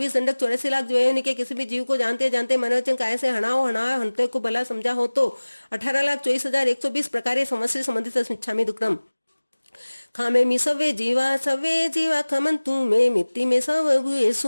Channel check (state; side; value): inverted; both; correlation -1.00